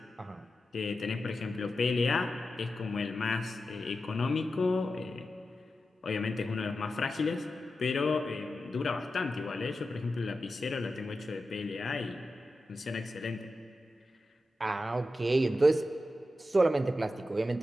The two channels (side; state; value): both; normal; correlation 0.91